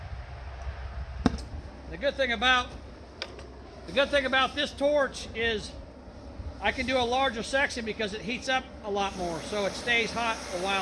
The good thing about this torch is I can do a larger section because it heats up a lot more, so it stays hot a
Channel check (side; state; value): both; identical; correlation 1.00